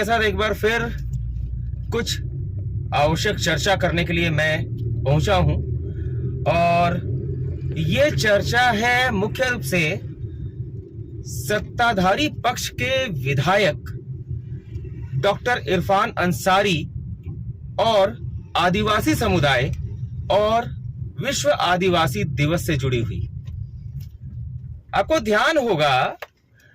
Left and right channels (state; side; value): identical; both; correlation 1.00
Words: साथ एक बार फिर कुछ आवश्यक चर्चा करने के लिए मैं पहुंचा हूं और ये चर्चा है मुख्य रूप से सत्ताधारी पक्ष के विधायक डॉक्टर इरफान अंसारी और आदिवासी समुदाय और विश्व आदिवासी दिवस से जुड़ी हुई। आपको ध्यान होगा